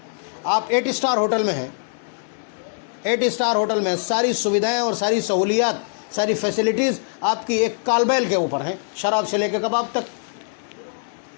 آپ 8 اسٹار ہوٹل میں ہیں، 8 اسٹار ہوٹل میں ساری سویدھائیں اور ساری سہولیات، ساری فیسلٹیز آپ کی ایک کال بیل کے اوپر ہیں، شراب سے لے کے کباب تک۔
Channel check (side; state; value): right; silent; digital silence